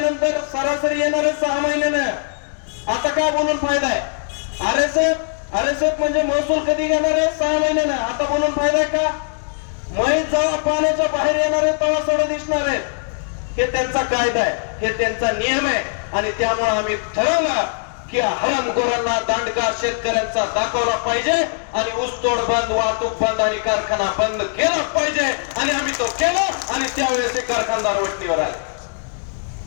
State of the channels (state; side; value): silent; right; digital silence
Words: सरासरी येणार 6 महिन्यानं. आता काय बोलून फायदा आहे? आरएसएफ म्हणजे महसूल कधी घेणार आहे? 6 महिन्यानं. आता बोलून फायदा आहे का? म्हैस जेव्हा पाण्याच्या बाहेर येणार आहे तेव्हा सोडं दिसणार आहे. हे त्यांचा कायदा आहे, हे त्यांचा नियम आहे. आणि त्यामुळे आम्ही ठरवलं की हरामखोरांना दांडगा शेतकऱ्यांचा दाखवला पाहिजे आणि ऊसतोड बंद, वाहतूक बंद आणि कारखाना बंद केला पाहिजे. आणि आम्ही तो केला आणि त्यावेळेस ते कारखानदार वटणीवर आले.